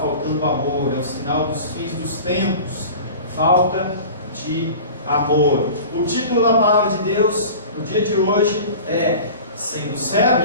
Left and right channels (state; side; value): inverted; both; correlation -0.38